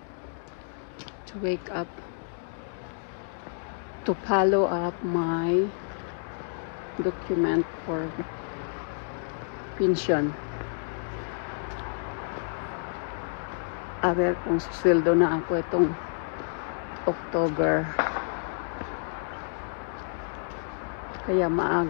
to wake up to follow up my document for pension. A ver kung susweldo na ako itong October. Kaya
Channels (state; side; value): silent; right; digital silence